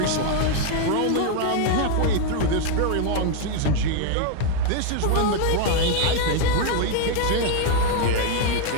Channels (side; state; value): both; different; correlation 0.00